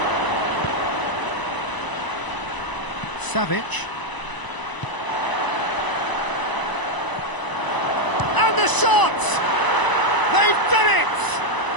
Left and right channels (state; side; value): late; right; 1.0 ms